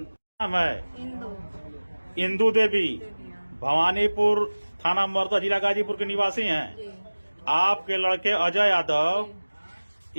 इंदू देवी भवानीपुर थाना मर्दा जिला गाजीपुर के निवासी हैं। आपके लड़के अजय यादव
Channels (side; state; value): both; inverted; correlation -1.00